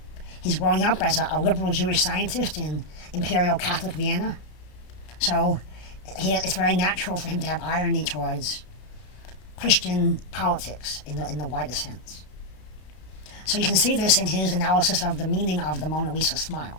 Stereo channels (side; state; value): right; late; 33 ms